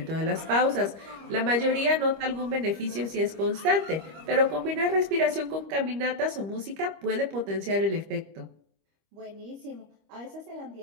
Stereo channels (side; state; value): left; late; 25 ms